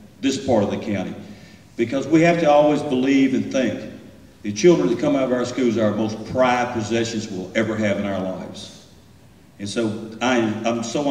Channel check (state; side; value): identical; both; correlation 1.00